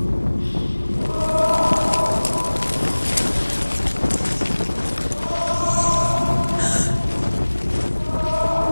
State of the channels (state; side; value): inverted; both; correlation -1.00